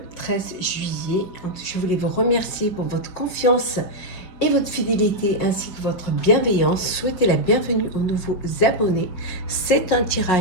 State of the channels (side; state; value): right; late; 5.5 ms